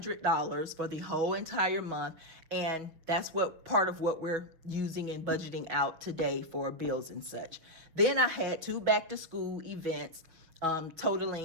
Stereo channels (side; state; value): left; late; 6.5 ms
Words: for the whole entire month, and that's what part of what we're using and budgeting out today for bills and such. Then I had 2 back-to-school events